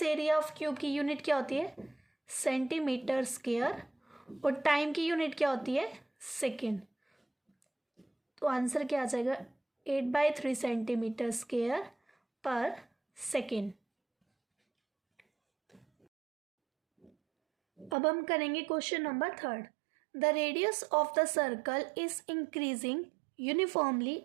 एरिया ऑफ क्यूब की यूनिट क्या होती है, सेंटीमीटर स्क्वायर, और टाइम की यूनिट क्या होती है, सेकेंड। तो आंसर क्या आ जाएगा, 8/3 सेंटीमीटर स्क्वायर पर सेकेंड। अब हम करेंगे question number 3। The radius of the circle is increasing uniformly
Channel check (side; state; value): left; drops out; at 17.9 s